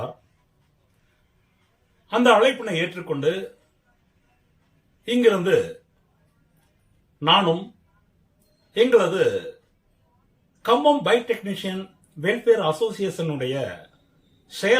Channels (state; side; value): identical; both; correlation 1.00